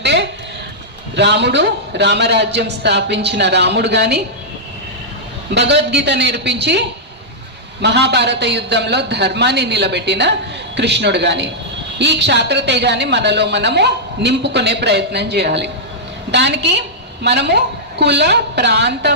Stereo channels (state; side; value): normal; both; correlation -0.10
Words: రాముడు, రామరాజ్యం స్థాపించిన రాముడు కానీ, భగవద్గీత నేర్పించి మహాభారత యుద్ధంలో ధర్మాన్ని నిలబెట్టిన కృష్ణుడు కానీ, ఈ క్షాత్రతేజాన్ని మనలో మనము నింపుకునే ప్రయత్నం చేయాలి. దానికి మనము కుల, ప్రాంత,